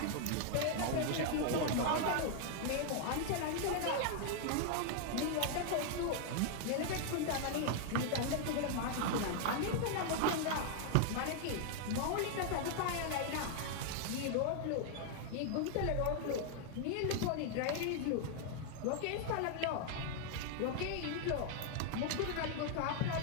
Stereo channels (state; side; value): different; both; correlation 0.00